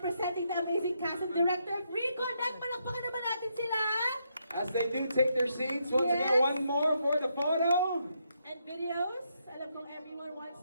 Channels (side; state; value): both; inverted; correlation -0.78